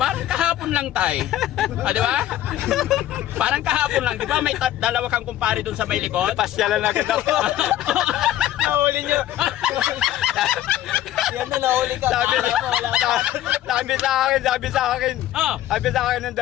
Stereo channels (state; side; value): quieter; right; 13.0 dB